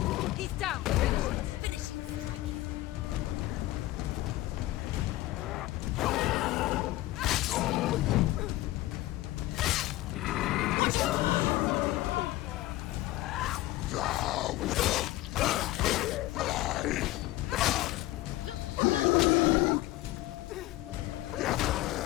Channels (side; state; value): right; quieter; 17.0 dB